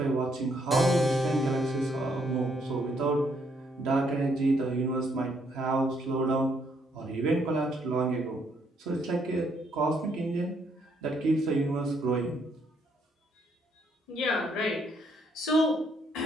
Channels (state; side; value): normal; both; correlation 0.71